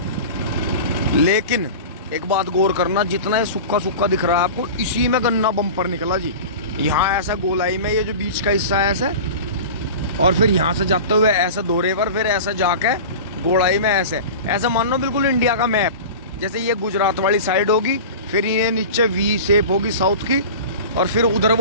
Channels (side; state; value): both; inverted; correlation -0.33